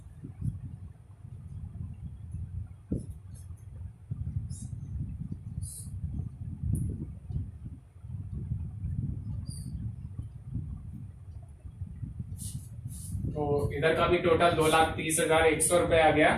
तो इधर का भी टोटल 2,30,100 रुपए आ गया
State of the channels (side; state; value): both; identical; correlation 1.00